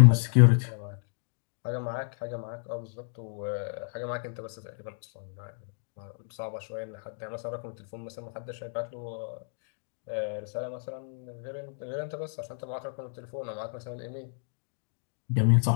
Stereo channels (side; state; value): right; silent; digital silence